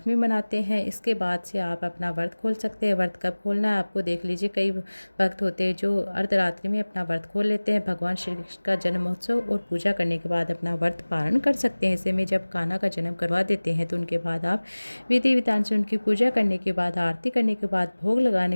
मनाते हैं। इसके बाद से आप अपना व्रत खोल सकते हैं। व्रत कब खोलना है आपको देख लीजिए। कई भक्त होते हैं जो अर्धरात्रि में अपना व्रत खोल लेते हैं। भगवान श्री कृष्ण का जन्मोत्सव और पूजा करने के बाद अपना व्रत पारण कर सकते हैं। ऐसे में जब कान्हा का जन्म करवा देते हैं तो उनके बाद आप विधि विधान से उनकी पूजा करने के बाद, आरती करने के बाद, भोग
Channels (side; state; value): both; inverted; correlation -1.00